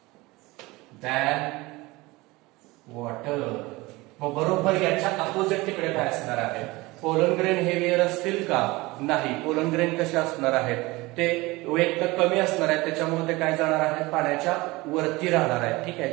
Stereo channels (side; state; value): left; quieter; 21.7 dB